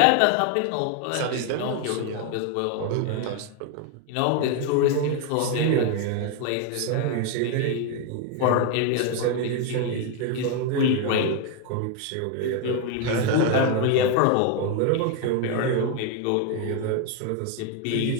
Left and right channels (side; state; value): both; different; correlation 0.01